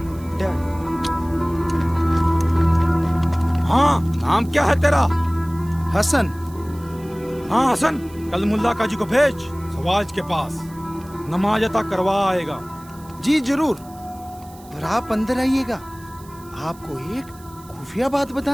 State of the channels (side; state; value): right; noise; hiss, 24 dB below the sound